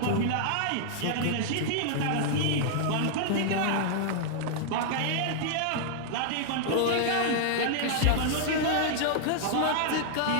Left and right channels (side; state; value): both; different; correlation -0.01